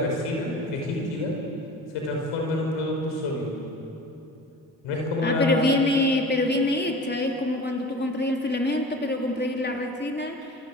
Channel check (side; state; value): both; normal; correlation 0.38